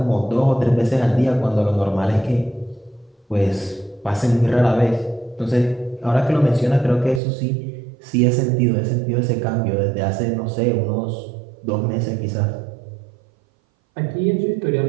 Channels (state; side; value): drops out; left; at 7.2 s